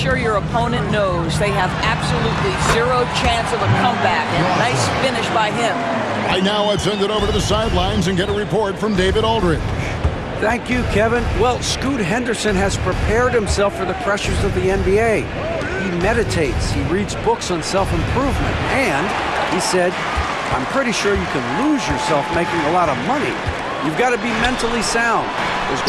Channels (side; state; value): both; identical; correlation 1.00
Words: your opponent knows they have absolutely zero chance of a comeback. And a nice finish by him. Right now, let's send it over to the sidelines and get a report from David Aldridge. Thank you, Kevin. Well, Scoot Henderson has prepared himself for the pressures of the NBA. He meditates, he reads books on self-improvement, and he said, I'm pretty sure you can lose yourself making a lot of money. You've got to be mentally sound. There's